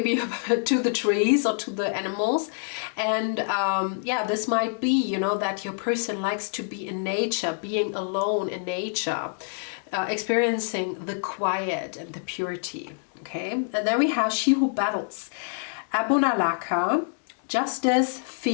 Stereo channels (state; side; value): silent; right; digital silence